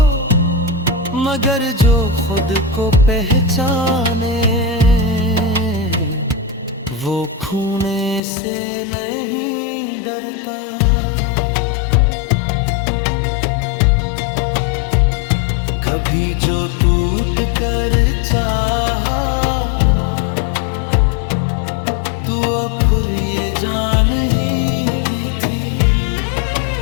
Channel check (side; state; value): right; drops out; at 8.2 s